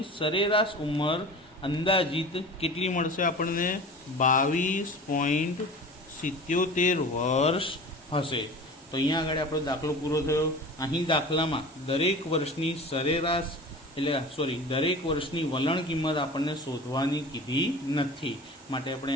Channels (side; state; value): both; normal; correlation 0.37